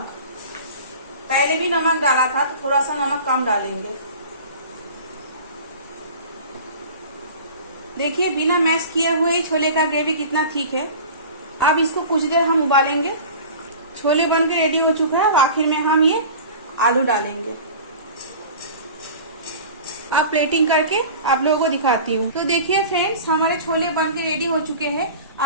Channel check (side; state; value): both; inverted; correlation -0.38